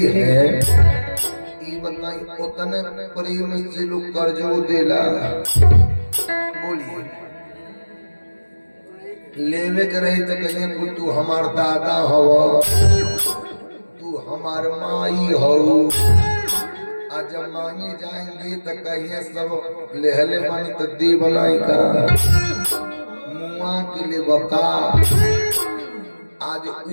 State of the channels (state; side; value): inverted; both; correlation -1.00